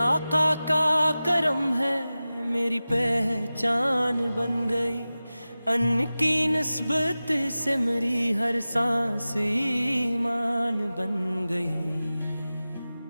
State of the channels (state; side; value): inverted; both; correlation -0.96